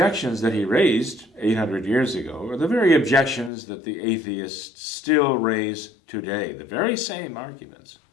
that he raised 800 years ago are the very objections that the atheists still raise today, the very same arguments.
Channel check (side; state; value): right; drops out; at 3.5 s